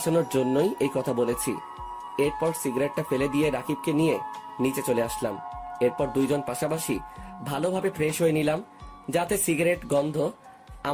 জন্যই এই কথা বলেছি। এরপর সিগারেটটা ফেলে দিয়ে রাকিবকে নিয়ে নিচে চলে আসলাম। এরপর দুইজন পাশাপাশি ভালোভাবে ফ্রেশ হয়ে নিলাম, যাতে সিগারেট গন্ধ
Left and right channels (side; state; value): both; identical; correlation 1.00